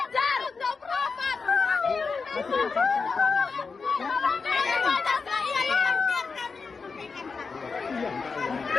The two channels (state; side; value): quieter; right; 4.8 dB